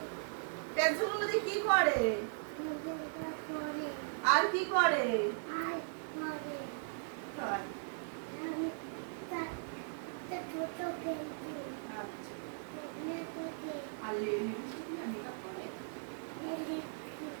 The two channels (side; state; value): left; silent; digital silence